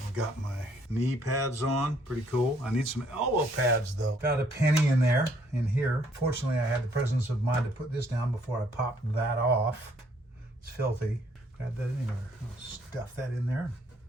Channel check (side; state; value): both; normal; correlation 0.66